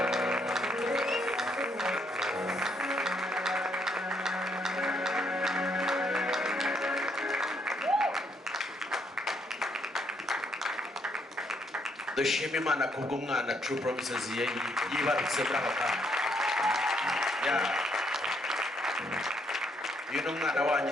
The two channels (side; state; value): both; normal; correlation 0.72